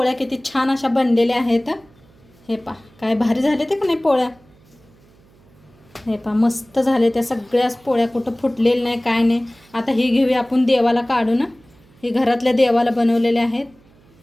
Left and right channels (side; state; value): right; noise; hum, 29 dB below the sound